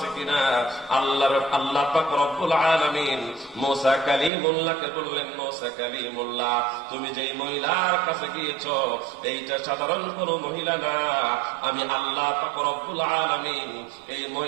কিনা? আল্লাহ পাক রব্বুল আলামিন মুসা কালিমুল্লাহকে বললেন, মুসা কালিমুল্লাহ, তুমি যেই মহিলার কাছে গিয়েছো এইটা সাধারণ কোন মহিলা না, আমি আল্লাহ পাক রব্বুল আলামিন এই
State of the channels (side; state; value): left; drops out; at 4.3 s